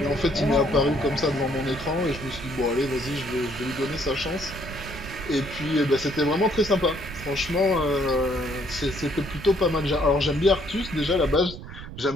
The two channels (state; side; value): noise; right; rumble, 12 dB below the sound